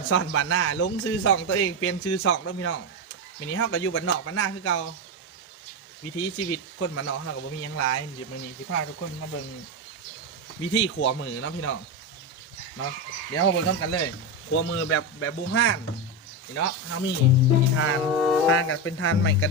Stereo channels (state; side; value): normal; both; correlation 0.12